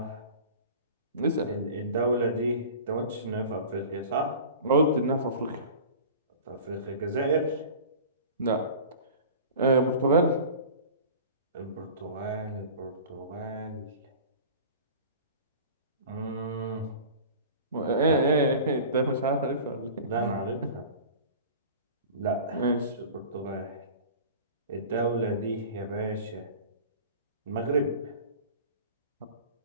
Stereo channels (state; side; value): inverted; both; correlation -0.39